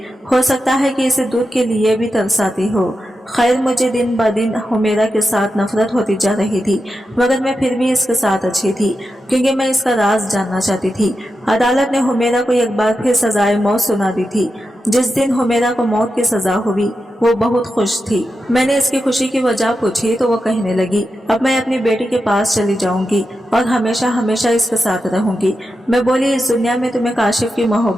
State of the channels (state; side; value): normal; both; correlation 0.89